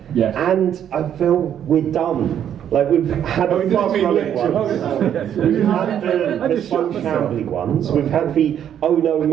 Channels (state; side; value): quieter; left; 9.6 dB